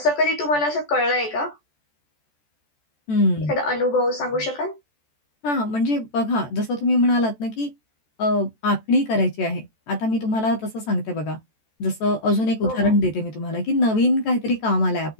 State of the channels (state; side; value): late; right; 14 ms